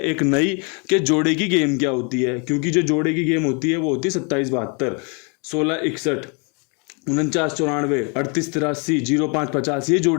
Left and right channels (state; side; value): quieter; right; 34.8 dB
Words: एक नई कि जोड़े की गेम क्या होती है, क्योंकि जो जोड़े की गेम होती है वो होती है 27 72, 16 61, 49 94, 38 83, 05 50, ये